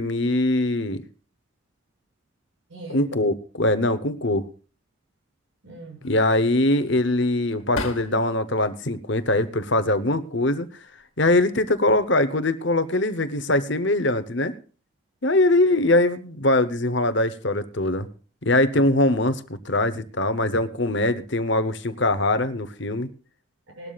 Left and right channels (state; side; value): normal; both; correlation 0.08